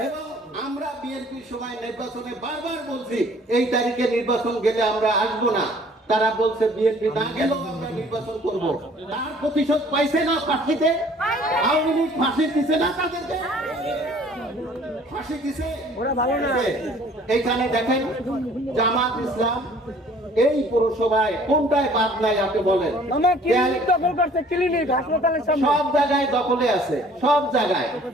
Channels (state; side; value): normal; both; correlation 0.54